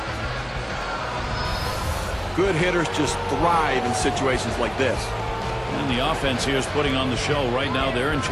Good hitters just thrive in situations like this. And the offense here is putting on the show. Right now, they're in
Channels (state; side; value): identical; both; correlation 1.00